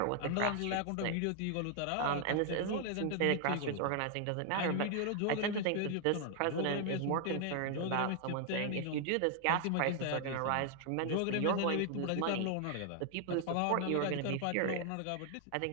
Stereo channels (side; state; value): both; different; correlation 0.00